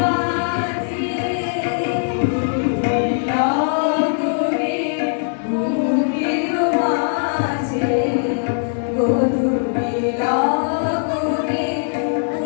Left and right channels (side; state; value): right; silent; digital silence